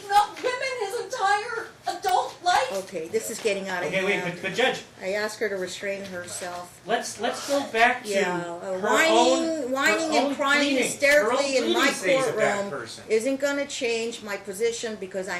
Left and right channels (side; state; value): both; identical; correlation 1.00